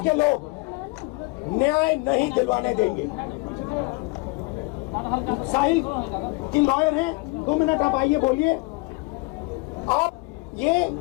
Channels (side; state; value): right; quieter; 26.1 dB